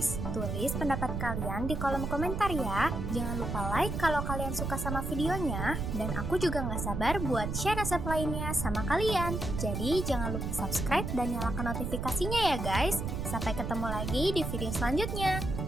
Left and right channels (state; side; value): noise; right; rumble, 3 dB below the sound